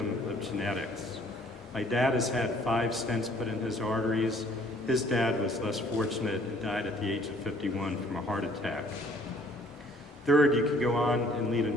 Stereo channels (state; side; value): normal; both; correlation 0.58